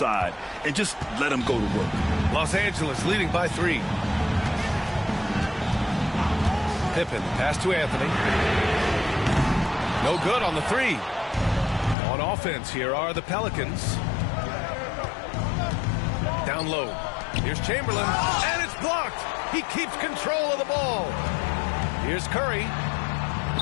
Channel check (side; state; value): right; drops out; at 12.0 s